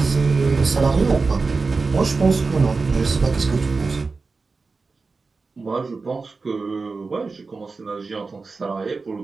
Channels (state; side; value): quieter; left; 4.2 dB